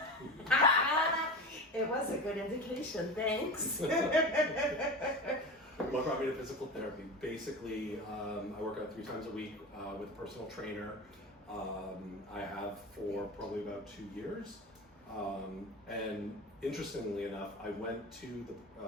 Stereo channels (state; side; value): normal; both; correlation 0.28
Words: It was a good indication, thanks. What brought me to physical therapy? Basically, I work out 3 times a week with a personal trainer. I have for probably about 2 years. And interestingly enough, I went to the